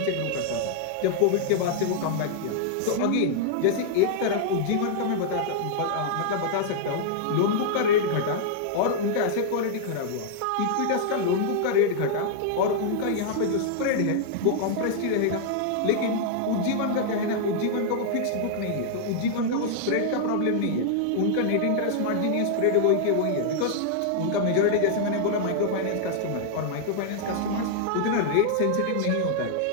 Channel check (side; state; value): both; different; correlation -0.01